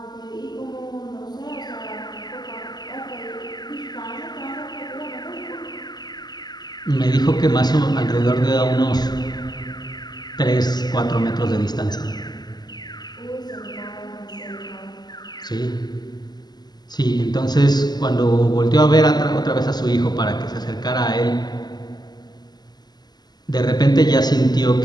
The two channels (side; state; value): right; late; 0.20 ms